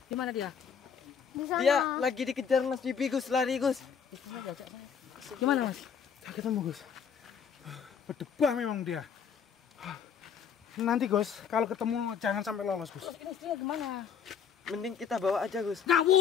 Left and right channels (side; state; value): right; quieter; 7.2 dB